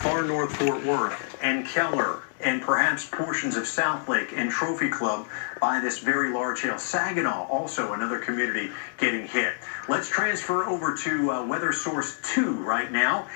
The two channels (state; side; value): silent; right; digital silence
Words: north Fort Worth and Keller and perhaps portions of Southlake and Trophy Club by this very large hail. Saginaw, also another community getting hit. Let's transfer over to Weather Source 2 right now,